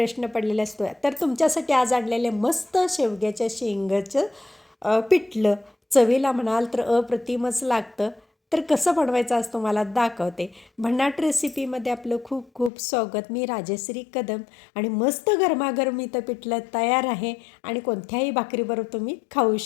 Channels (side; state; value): right; drops out; at 12.7 s